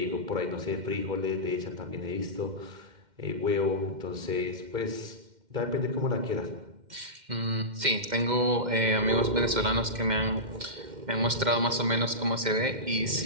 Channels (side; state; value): left; late; 2.1 ms